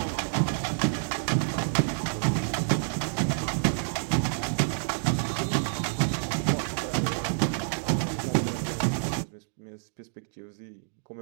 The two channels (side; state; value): left; silent; digital silence